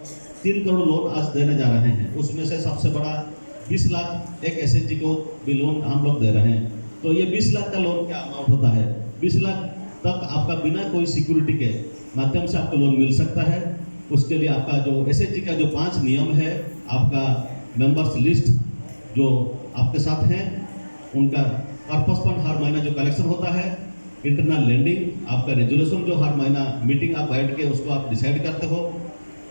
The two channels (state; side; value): inverted; both; correlation -1.00